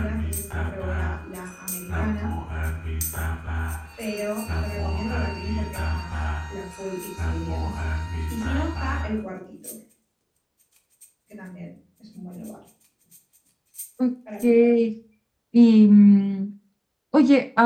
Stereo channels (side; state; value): both; identical; correlation 1.00